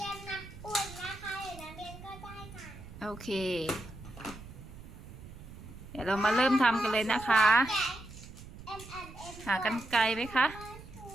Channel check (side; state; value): right; noise; rumble, 15 dB below the sound